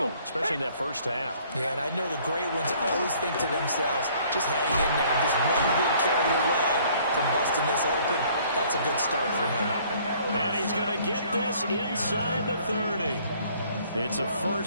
especially in that first half. Yeah, and I know the great ones always think to themselves, just hang in there. Just one big carry away from busting this open. That's a good start for him. And he's going to get this inside the 30. It's a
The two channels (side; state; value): both; inverted; correlation -0.59